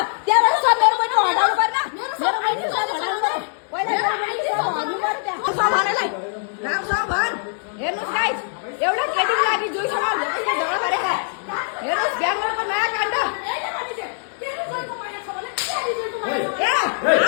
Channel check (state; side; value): silent; right; digital silence